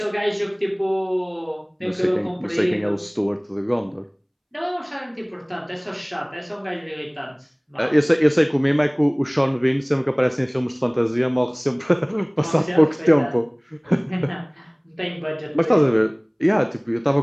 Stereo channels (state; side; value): identical; both; correlation 1.00